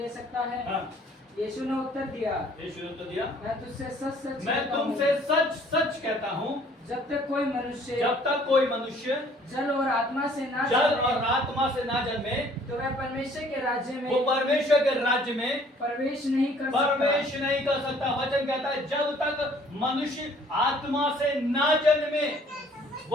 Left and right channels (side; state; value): both; normal; correlation 0.57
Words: सकता है? हाँ। यीशु ने उत्तर दिया, यीशु ने उत्तर दिया, मैं तुझसे सच सच मैं कहता हूँ, तुमसे सच सच कहता हूँ, जब तक कोई मनुष्य जब तक कोई मनुष्य जल और आत्मा से ना जल जन्मे, और आत्मा से ना जन्मे तो वह परमेश्वर के राज्य वो में परमेश्वर के राज्य में प्रवेश नहीं कर सकता। प्रवेश नहीं कर सकता। वचन कहता है जब तक मनुष्य आत्मा से ना जन्मे